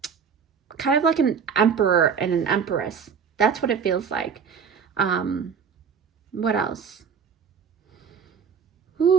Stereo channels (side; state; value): left; quieter; 6.6 dB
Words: of like an emperor and an empress. That's what it feels like. What else?